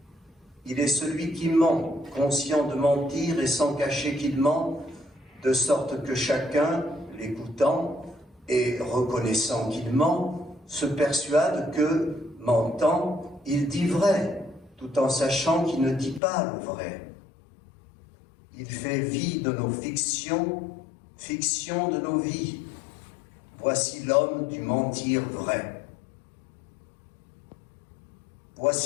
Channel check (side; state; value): right; drops out; at 16.2 s